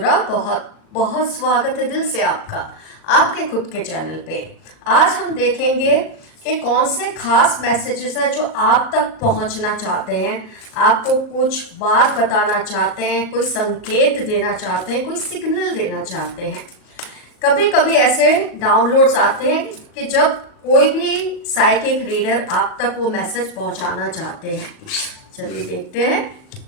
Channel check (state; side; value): late; right; 37 ms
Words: बहुत बहुत स्वागत है दिल से आपका आपके खुद के चैनल पे। आज हम देखेंगे कि कौन से खास मैसेजेस हैं जो आप तक पहुंचना चाहते हैं, आपको कुछ बात बताना चाहते हैं, कोई संकेत देना चाहते हैं, कोई सिग्नल देना चाहते हैं। कभी कभी ऐसे डाउनलोड्स आते हैं कि जब कोई भी साइकिक रीडर आप तक वो मैसेज पहुंचाना चाहते हैं। चलिए देखते हैं,